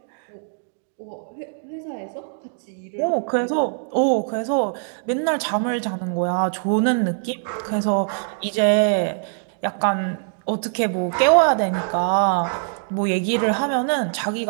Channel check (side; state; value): left; silent; digital silence